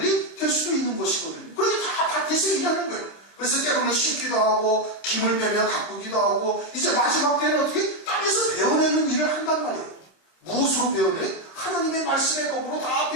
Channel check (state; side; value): late; right; 26 ms